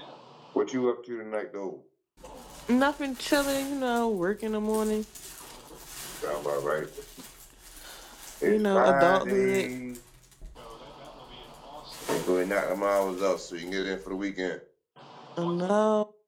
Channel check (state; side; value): identical; both; correlation 1.00